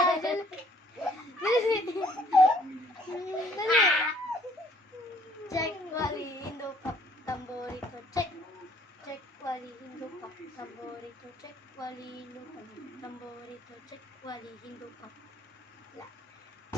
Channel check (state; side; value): normal; both; correlation 0.61